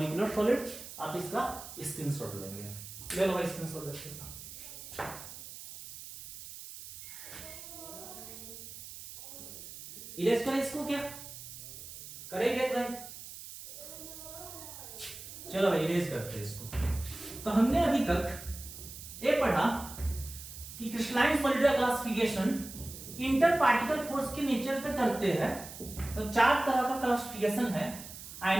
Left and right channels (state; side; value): noise; right; hiss, 13 dB below the sound